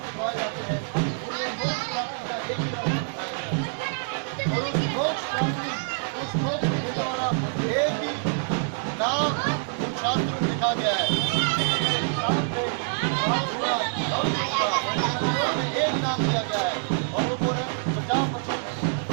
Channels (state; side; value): silent; left; digital silence